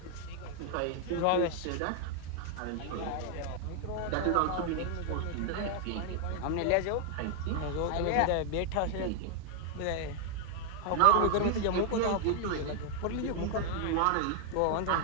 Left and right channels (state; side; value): different; both; correlation 0.00